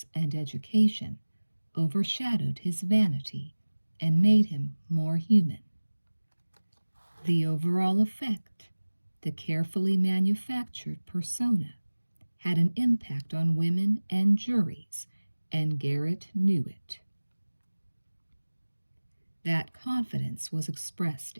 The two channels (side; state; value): both; inverted; correlation -1.00